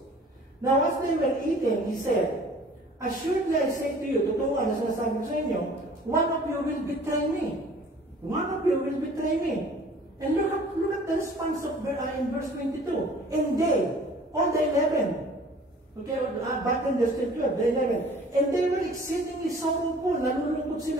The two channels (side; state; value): both; normal; correlation 0.50